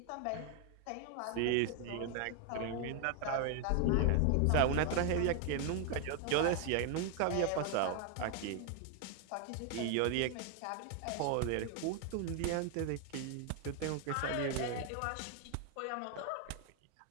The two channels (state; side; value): different; both; correlation 0.00